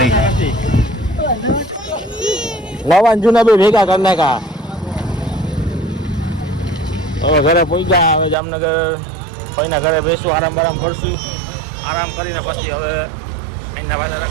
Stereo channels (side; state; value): left; drops out; at 8.3 s